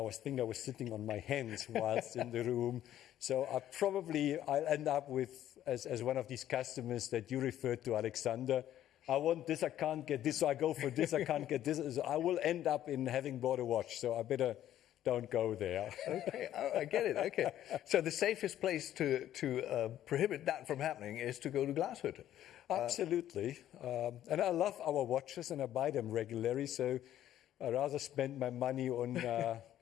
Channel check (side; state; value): right; quieter; 12.0 dB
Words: sitting on my hands whilst in the room. So I'll end up with, as one of these customers that you referred to, Alexandre, I want this, I can't get this, so I go for this, I can't get this. So I will end up in having bought a watch. So I better don't go there. Okay, I get it. Okay, so the safest place to prohibit that from happening is to go to Glashütte. Absolutely, and I love our watches and I buy them regularly. So I rather spend my money on,